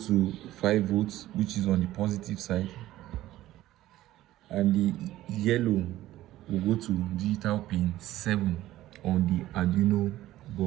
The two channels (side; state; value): left; quieter; 15.1 dB